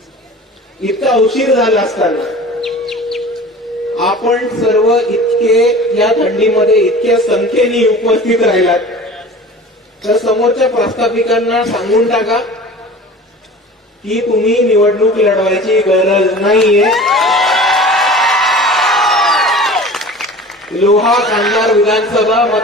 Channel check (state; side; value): normal; both; correlation 0.40